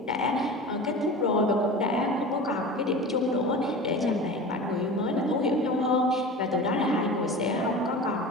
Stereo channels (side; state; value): both; normal; correlation 0.33